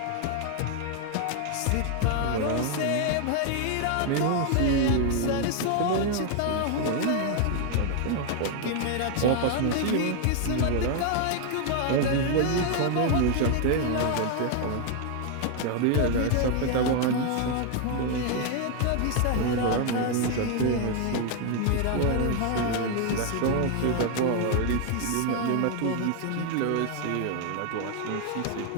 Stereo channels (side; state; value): both; different; correlation 0.00